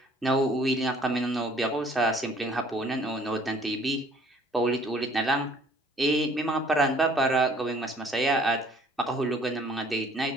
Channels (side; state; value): both; normal; correlation 0.57